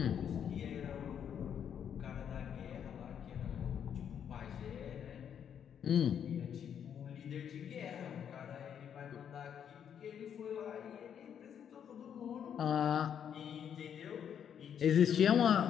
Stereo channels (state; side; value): quieter; right; 8.6 dB